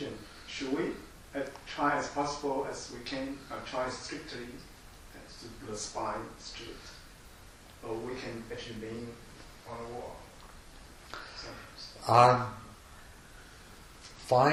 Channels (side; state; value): both; identical; correlation 1.00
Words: should we try as possible as we can try strictly to keep the spine straight, or we can actually lean on a wall?